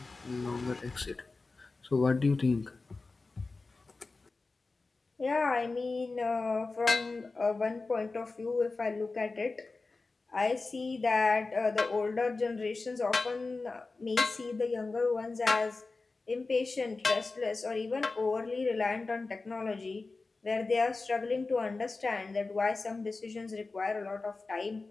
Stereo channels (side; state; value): right; quieter; 3.7 dB